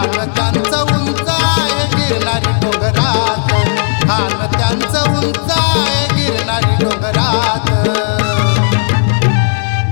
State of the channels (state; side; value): silent; right; digital silence